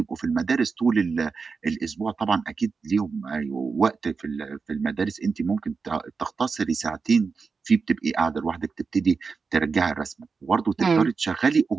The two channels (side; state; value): left; quieter; 4.9 dB